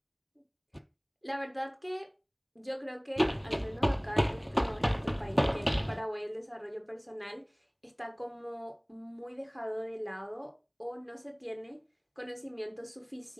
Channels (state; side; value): identical; both; correlation 1.00